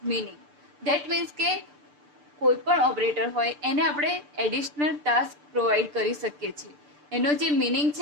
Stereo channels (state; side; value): late; left; 6.8 ms